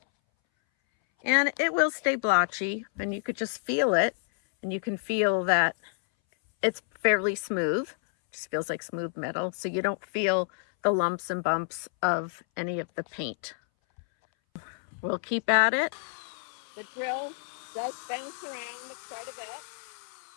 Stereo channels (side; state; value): right; silent; 59 dB below the other